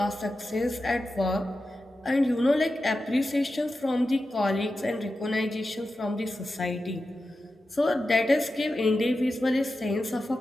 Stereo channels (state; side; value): normal; both; correlation 0.92